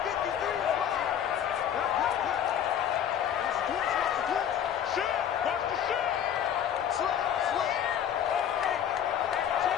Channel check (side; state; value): right; quieter; 9.3 dB